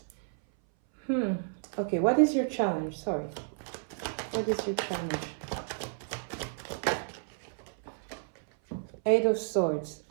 Okay, what is your challenge? Sorry. What is your challenge? Eight of Swords.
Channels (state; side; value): silent; left; 57 dB below the other